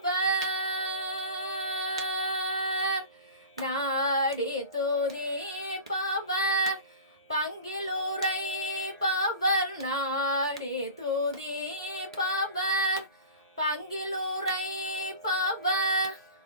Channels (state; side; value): inverted; both; correlation -0.36